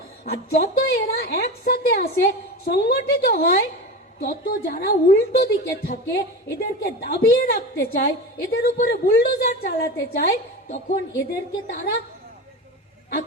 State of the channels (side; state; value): both; normal; correlation 0.26